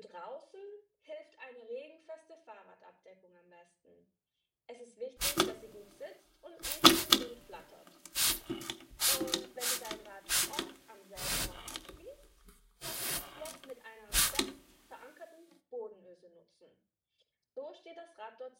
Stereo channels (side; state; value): both; identical; correlation 1.00